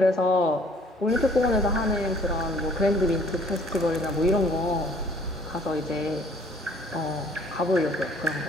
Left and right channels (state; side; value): normal; both; correlation 0.57